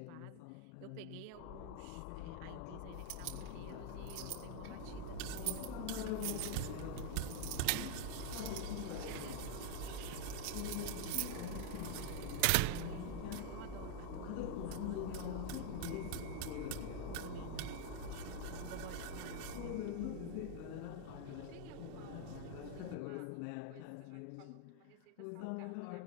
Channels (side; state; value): both; different; correlation 0.00